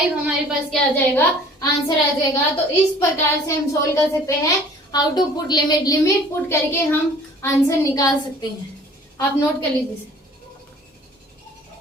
हमारे पास क्या आ जाएगा, आंसर आ जाएगा। तो इस प्रकार से हम सोल्व कर सकते हैं how to put limit. Limit put करके हम आंसर निकाल सकते हैं। आप नोट कर लीजिए।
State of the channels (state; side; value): normal; both; correlation 0.50